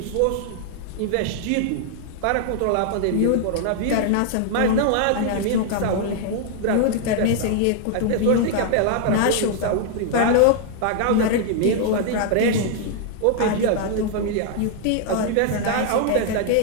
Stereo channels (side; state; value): both; different; correlation 0.00